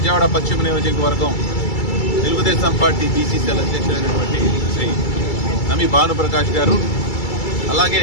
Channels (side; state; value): right; late; 2.3 ms